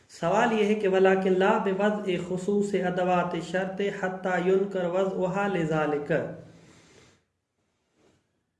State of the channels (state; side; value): identical; both; correlation 1.00